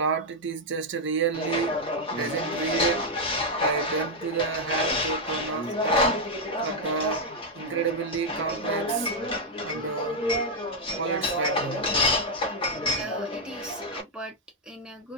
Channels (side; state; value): both; normal; correlation -0.01